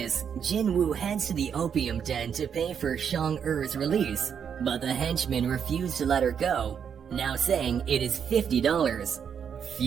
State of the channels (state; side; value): quieter; left; 7.6 dB